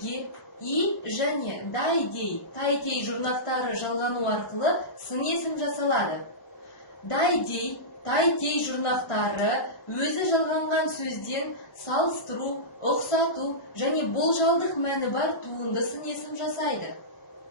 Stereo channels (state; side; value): late; right; 1.0 ms